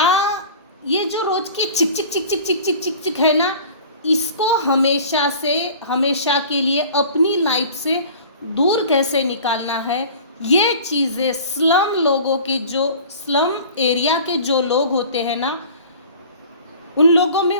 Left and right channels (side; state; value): both; inverted; correlation -0.42